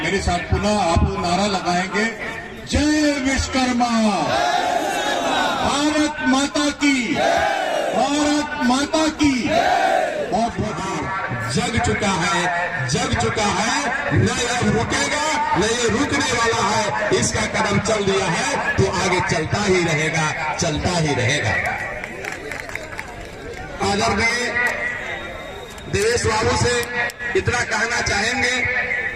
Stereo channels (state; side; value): identical; both; correlation 1.00